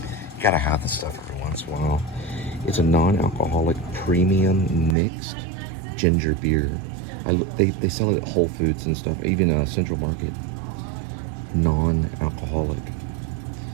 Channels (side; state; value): left; drops out; at 5.0 s